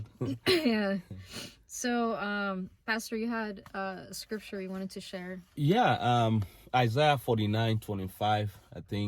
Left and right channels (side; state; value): both; identical; correlation 1.00